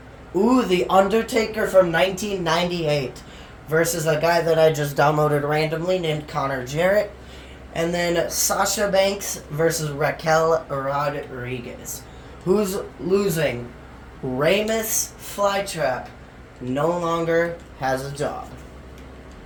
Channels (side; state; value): both; identical; correlation 1.00